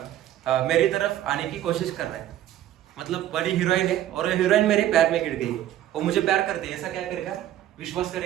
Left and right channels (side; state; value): left; quieter; 12.4 dB